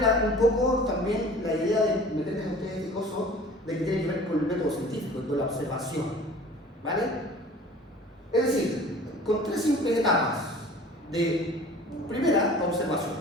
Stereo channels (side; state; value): both; normal; correlation 0.45